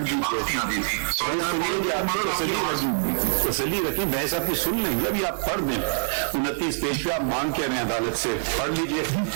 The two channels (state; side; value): silent; left; digital silence